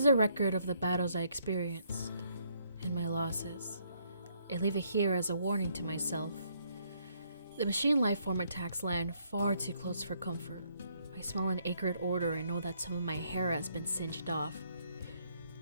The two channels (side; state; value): both; inverted; correlation -0.70